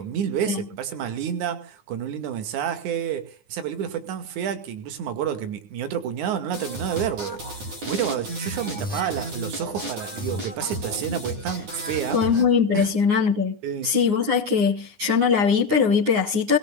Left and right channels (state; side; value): late; left; 9.7 ms